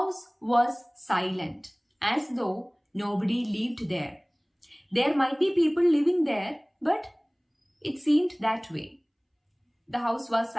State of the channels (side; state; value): both; identical; correlation 1.00